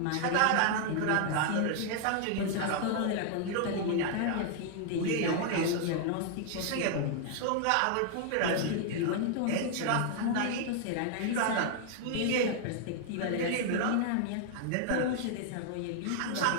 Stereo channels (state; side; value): different; both; correlation 0.00